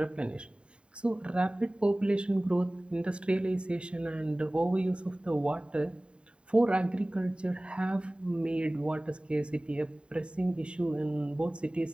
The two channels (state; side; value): late; left; 0.054 ms